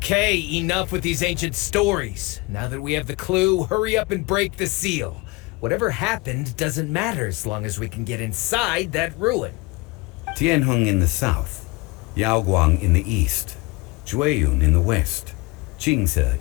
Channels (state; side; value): quieter; right; 24.0 dB